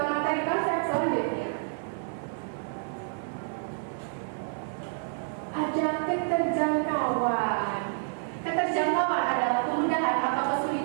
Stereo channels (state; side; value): silent; left; digital silence